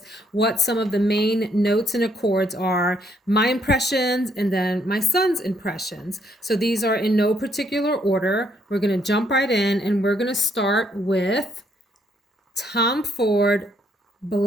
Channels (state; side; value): normal; both; correlation 0.71